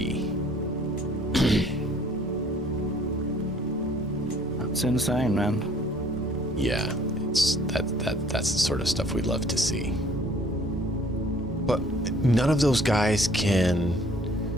That's insane, man. Yeah, it's that's the sort of stuff we'd love to see. But none of those guys can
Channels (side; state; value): both; normal; correlation 0.57